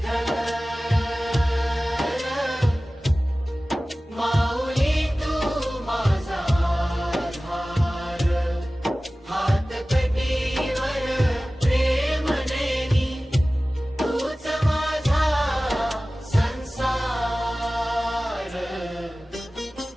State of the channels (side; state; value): both; normal; correlation 0.97